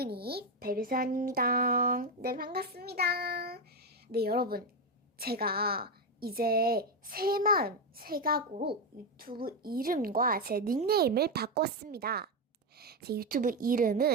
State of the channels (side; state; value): both; normal; correlation 0.08